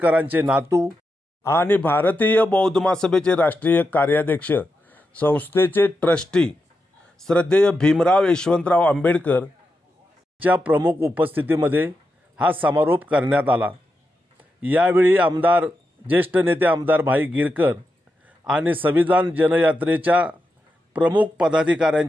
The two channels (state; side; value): normal; both; correlation 0.87